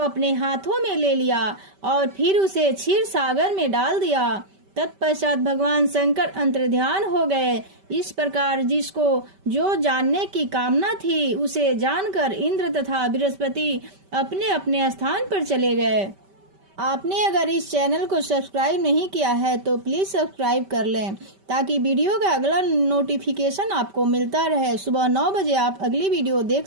हाथों में ले लिया और फिर उसे क्षीर सागर में डाल दिया। तत्पश्चात भगवान शंकर अंतर्ध्यान हो गए। इस प्रकार जिसको जो जानने की कामना थी उसे जानकर इंद्र तथा बृहस्पति अपने अपने स्थान पर चले गए। आपने अगर इस चैनल को सब्सक्राइब नहीं किया है तो प्लीज सब्सक्राइब कर लें ताकि वीडियो का अगला नोटिफिकेशन आपको मिलता रहे। सुबह 9 बजे आप अगली वीडियो देख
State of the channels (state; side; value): late; left; 5.2 ms